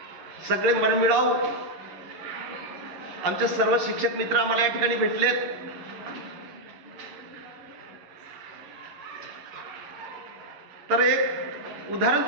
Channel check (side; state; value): left; late; 11 ms